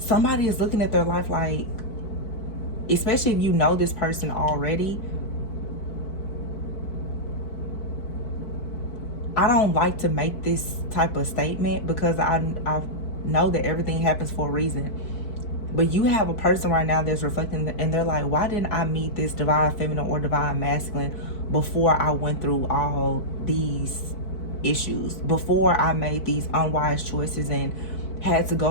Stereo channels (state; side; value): late; right; 4.6 ms